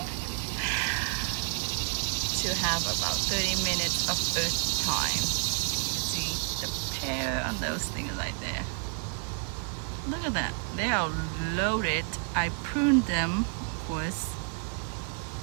To have about 30 minutes of earth time. Can you see the pear on those things right there? Look at that. They are loaded. I pruned them, of course,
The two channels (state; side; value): quieter; left; 39.3 dB